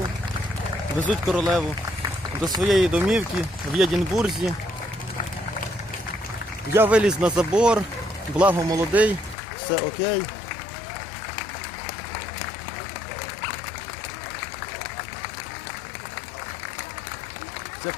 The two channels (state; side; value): drops out; right; at 9.3 s